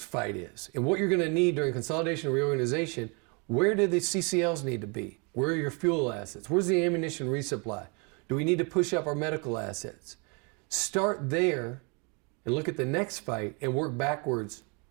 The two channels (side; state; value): left; quieter; 33.5 dB